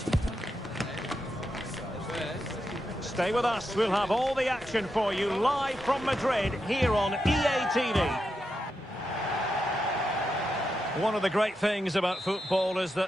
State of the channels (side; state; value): both; normal; correlation 0.86